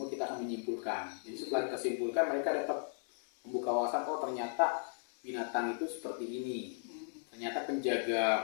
kita akan menyimpulkan. Jadi setelah kita simpulkan, mereka dapat membuka wawasan, oh ternyata binatang itu seperti ini. Ternyata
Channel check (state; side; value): silent; right; 54 dB below the other